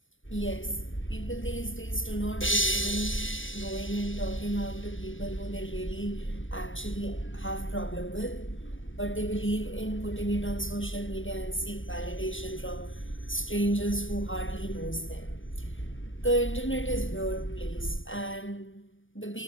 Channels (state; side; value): late; right; 0.57 ms